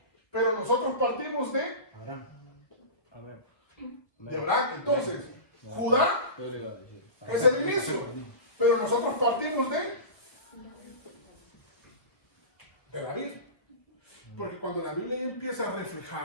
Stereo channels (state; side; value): late; right; 1.1 ms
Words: Pero nosotros partimos de Abraham. Amén. De Abraham. Entonces, Judá es el inicio. Pero nosotros partimos de David. Porque cuando la Biblia empieza a